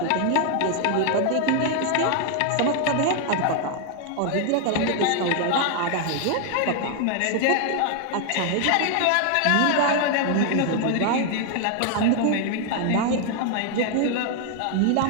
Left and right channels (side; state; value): both; different; correlation 0.00